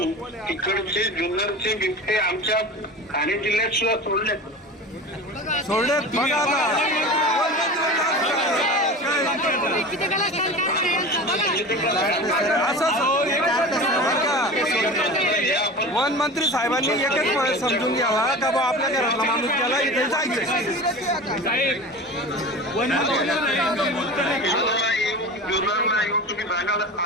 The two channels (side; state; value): both; normal; correlation 0.32